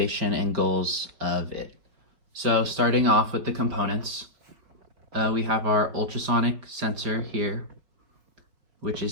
and goals of it. So starting off with the components, we have our ultrasonic sensor here, which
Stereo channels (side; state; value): left; late; 4.9 ms